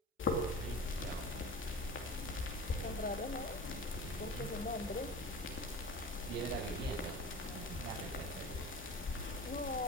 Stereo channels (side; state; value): both; normal; correlation 0.35